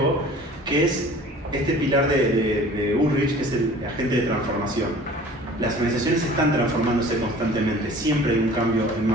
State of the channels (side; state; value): both; normal; correlation 0.46